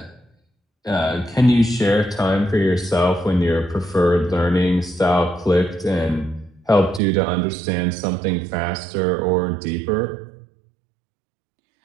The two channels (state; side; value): drops out; left; at 7.0 s